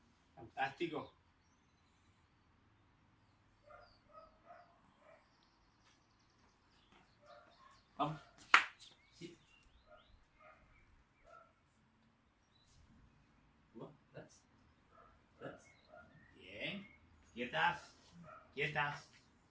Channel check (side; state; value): both; identical; correlation 1.00